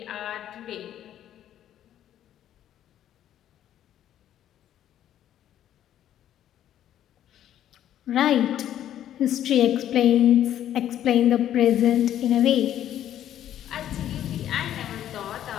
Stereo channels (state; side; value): quieter; right; 11.3 dB